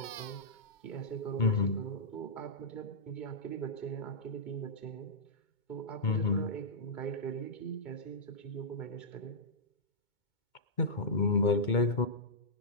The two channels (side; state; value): right; late; 2.2 ms